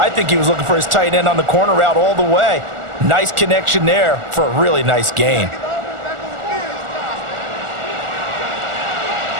think he was looking for his tight end on the corner route all the way. Nice connection there for a really nice gain.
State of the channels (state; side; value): late; left; 1.4 ms